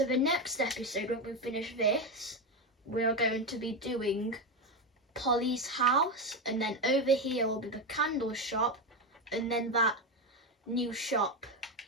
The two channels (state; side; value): normal; both; correlation 0.13